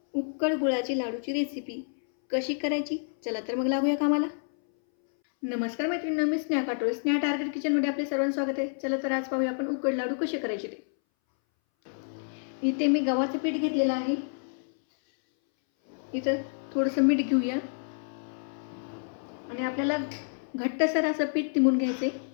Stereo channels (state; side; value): silent; right; 59 dB below the other